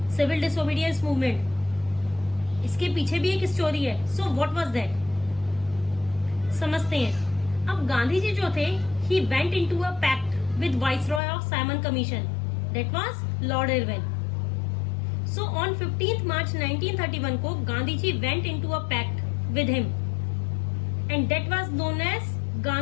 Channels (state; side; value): drops out; right; at 11.2 s